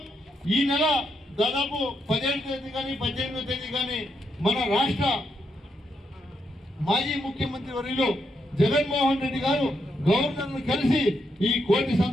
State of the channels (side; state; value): both; normal; correlation 0.80